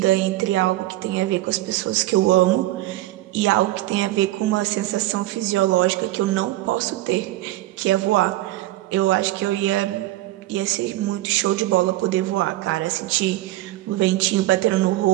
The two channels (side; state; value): left; quieter; 16.5 dB